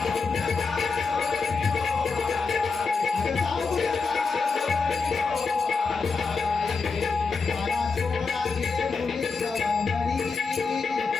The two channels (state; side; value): quieter; right; 4.6 dB